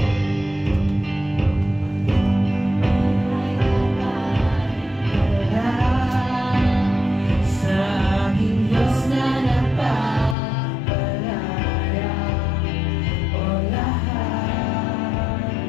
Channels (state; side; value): drops out; right; at 10.4 s